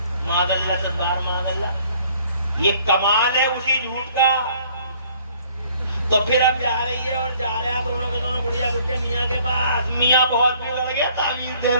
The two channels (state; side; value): inverted; both; correlation -0.58